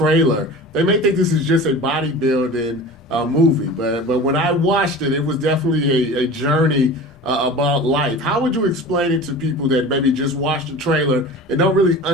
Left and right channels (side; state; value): both; normal; correlation 0.36